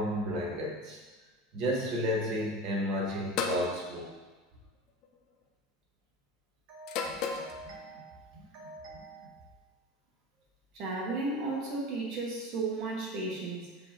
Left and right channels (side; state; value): both; normal; correlation 0.32